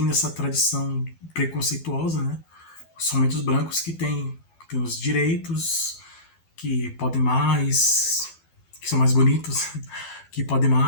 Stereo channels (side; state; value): right; late; 12 ms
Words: essa tradição preconceituosa, né? Somente os brancos que têm os direitos, que podem mais, que são mais bonitos, que podem